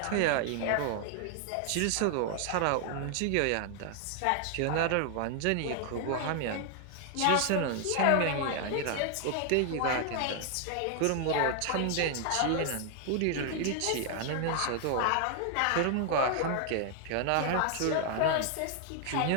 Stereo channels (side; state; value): both; different; correlation 0.00